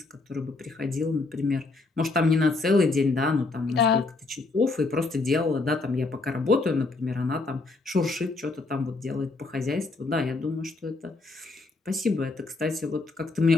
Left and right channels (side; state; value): right; quieter; 3.6 dB